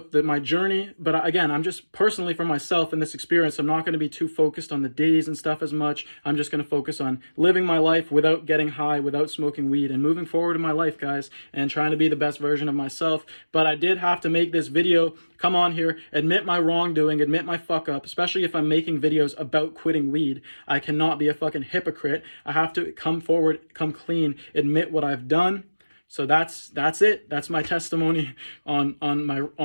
my journey, but again, I'm just personally for myself in this experience, I'm not going to be too focused on the days and stuff as much. I'm just going to focus on living my life without getting high, without smoking weed, and moving forward in my life, guys, and trying to be the best version of myself. But I did have to make this video, come on here, admit my wrongdoing, admit my fuck up, especially if I'm making videos about quitting weed. I cannot be a fucking hypocrite. I have to come forward, come clean, admit what I've done. So that's it. That's my testimony on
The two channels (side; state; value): both; inverted; correlation -1.00